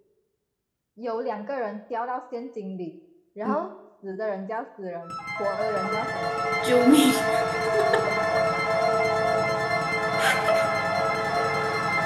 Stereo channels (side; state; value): both; identical; correlation 1.00